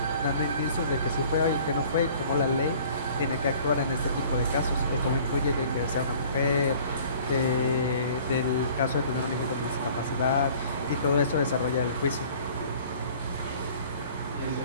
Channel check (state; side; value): inverted; both; correlation -0.51